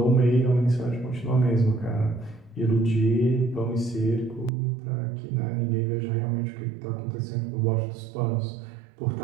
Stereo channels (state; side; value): drops out; left; at 4.5 s